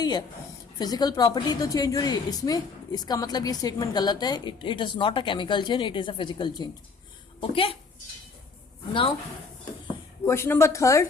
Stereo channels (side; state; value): right; quieter; 4.6 dB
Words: है, फिजिकल प्रॉपर्टी तो चेंज हो रही है. इसमें इसका मतलब ये स्टेटमेंट गलत है. It is not a chemical change, it is a physical change. Okay, now question number third.